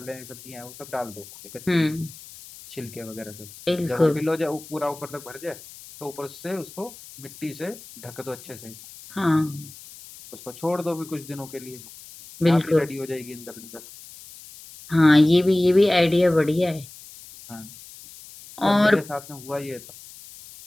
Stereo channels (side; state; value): left; noise; hiss, 18 dB below the sound